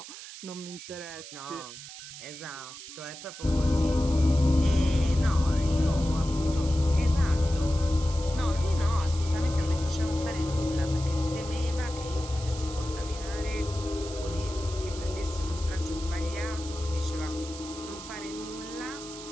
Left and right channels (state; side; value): noise; right; hiss, 13 dB below the sound